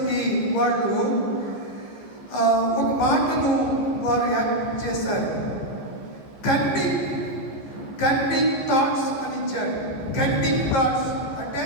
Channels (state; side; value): late; right; 14 ms